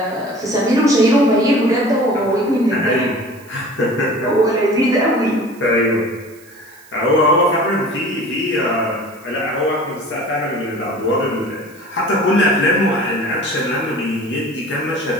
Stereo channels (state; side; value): noise; right; hiss, 26 dB below the sound